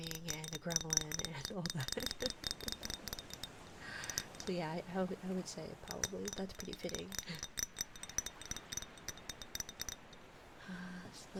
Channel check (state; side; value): identical; both; correlation 1.00